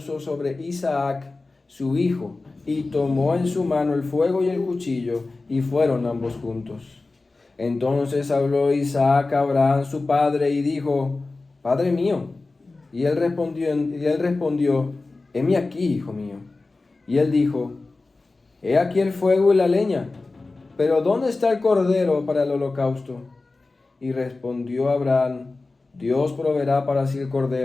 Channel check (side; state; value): right; quieter; 3.5 dB